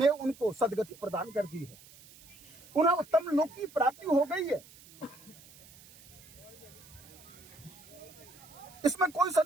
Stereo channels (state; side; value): noise; right; hiss, 22 dB below the sound